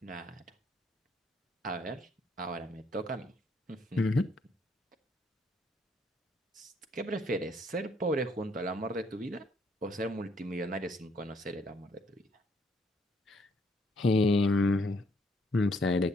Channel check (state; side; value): normal; both; correlation 0.69